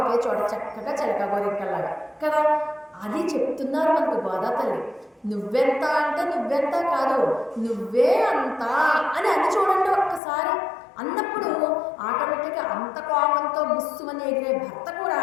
చోట చక్కగా చిలక గోరింకల్లాగా కదా. అది చెప్తున్నారు మనకు గోదా తల్లి. నువ్వెంత అంటే నువ్వెంత కాదు, నువ్వే అంత అని అది చూడండి ఒక్కసారి. అన్నప్పుడు ఆటోమేటిక్గా అంత కోపంతో బుస్సుమని ఎగిరే భర్త కూడా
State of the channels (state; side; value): drops out; right; at 10.2 s